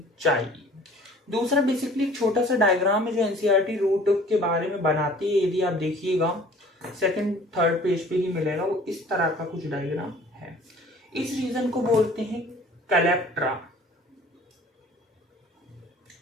चाहिए। दूसरा बेसिकली एक छोटा सा डायग्राम है जो एनसीईआरटी रूट के बारे में बनाती है। यदि आप देखिएगा सेकंड थर्ड पेज पे ही मिलेगा, वो इस तरह का कुछ डायग्राम है। इस रीजन को बोलते हैं कैलेप्ट्रा।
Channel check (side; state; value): both; normal; correlation 0.50